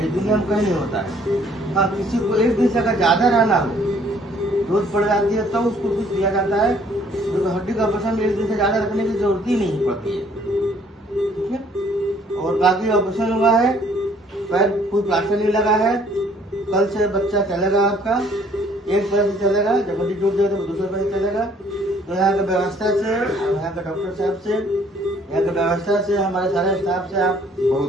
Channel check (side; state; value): both; normal; correlation 0.61